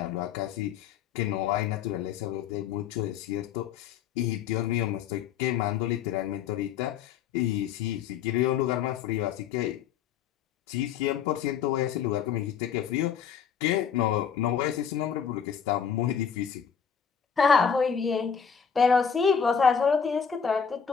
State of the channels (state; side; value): quieter; right; 7.4 dB